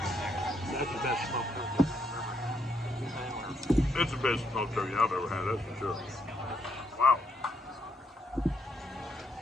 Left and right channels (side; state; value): both; normal; correlation 0.75